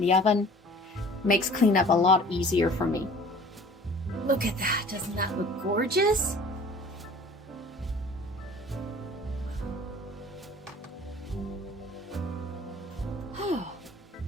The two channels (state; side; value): normal; both; correlation 0.48